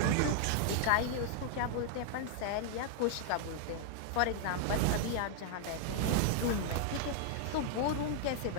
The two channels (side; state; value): both; different; correlation 0.00